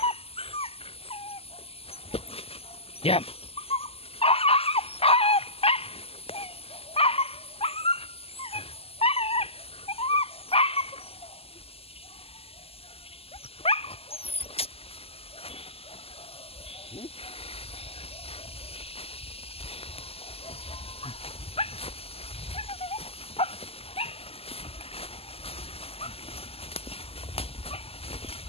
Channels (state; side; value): late; right; 0.29 ms